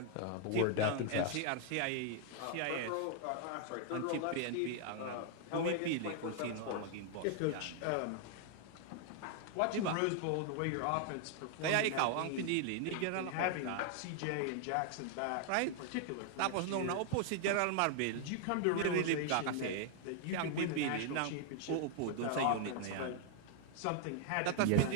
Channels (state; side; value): different; both; correlation 0.00